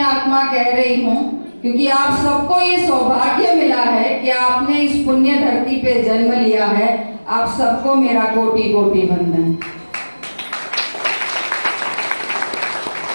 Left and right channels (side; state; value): both; inverted; correlation -1.00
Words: आत्मा कह रही हूँ क्योंकि आप सबको ये सौभाग्य मिला है कि आपने इस पुण्य धरती पे जन्म लिया है। आप सबको मेरा कोटि कोटि वंदन।